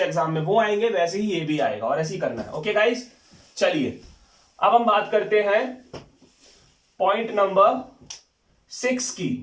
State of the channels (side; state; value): both; identical; correlation 1.00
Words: एग्जाम में वो आएंगे वैसे ही ये भी आएगा और ऐसे ही करना है। ओके गाइस, चलिए अब हम बात करते हैं पॉइंट नंबर 6 की।